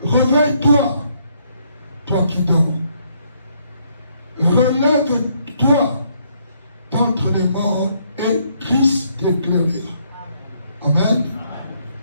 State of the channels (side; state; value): both; inverted; correlation -0.70